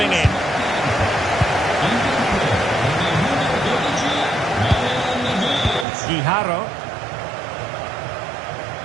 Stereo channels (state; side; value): drops out; left; at 5.9 s